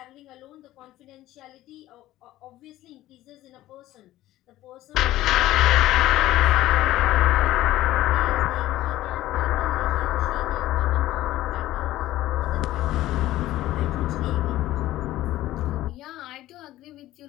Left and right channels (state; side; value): quieter; right; 15.3 dB